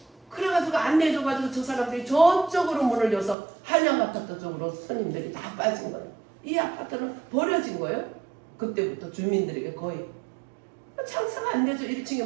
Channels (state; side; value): drops out; left; at 3.4 s